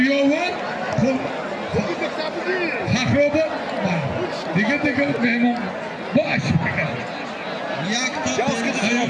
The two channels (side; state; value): both; identical; correlation 1.00